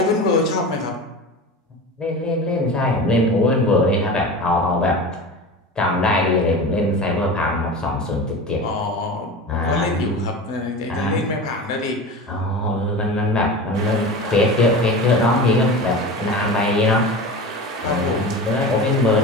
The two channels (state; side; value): normal; both; correlation 0.30